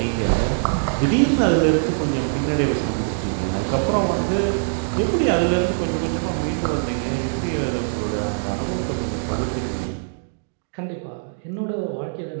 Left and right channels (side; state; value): left; silent; digital silence